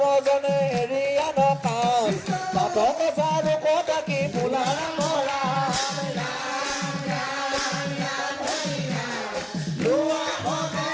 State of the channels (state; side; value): identical; both; correlation 1.00